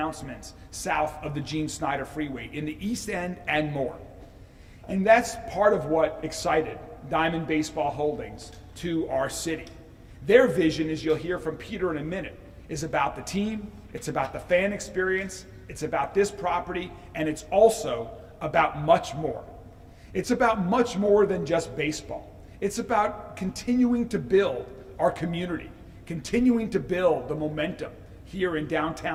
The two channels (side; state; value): both; identical; correlation 1.00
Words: south of the Gene Snyder Freeway, in the East End and more. And that's part of what excited Diamond Baseball Holdings to our city. Their vision, as you'll hear from Peter in a minute, is about the team, it's about the fan experience, it's about this property, and it's also about much more. It's about much more than just baseball. It's about continuing to build our community, continuing to build the momentum here in